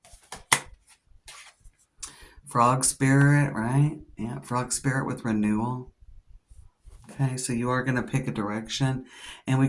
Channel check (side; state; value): both; identical; correlation 1.00